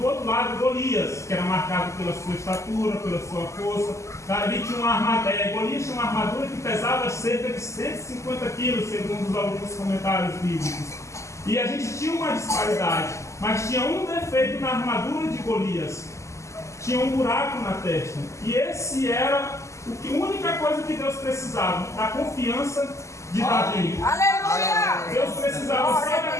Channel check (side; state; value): right; late; 0.14 ms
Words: outro lado Golias, que era marcado pela sua estatura, pela sua força. Davi tinha Golias tinha uma armadura que pesava cerca de 150 quilos, segundo alguns comentários bíblicos. E a gente tinha uma disparidade, mas tinha um defeito na armadura de Golias: tinha um buraco na testa. E esse era a única coisa que Deus precisava, da confiança de Davi. Aleluia! Deus precisava só da